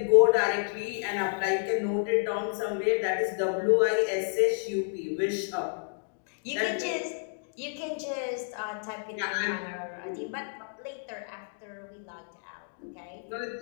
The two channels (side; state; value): right; silent; digital silence